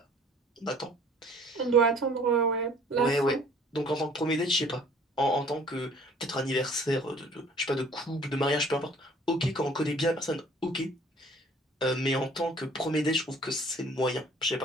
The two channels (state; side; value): normal; both; correlation 0.54